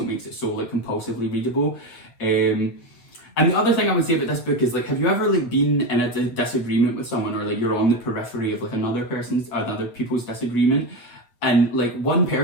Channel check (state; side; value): late; right; 8.4 ms